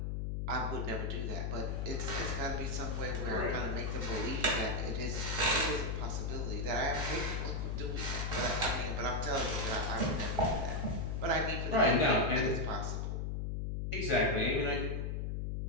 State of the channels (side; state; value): left; noise; hum, 1 dB below the sound